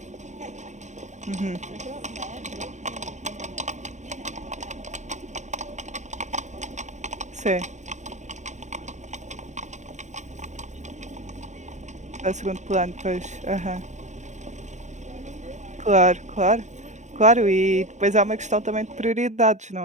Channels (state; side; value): late; left; 0.34 ms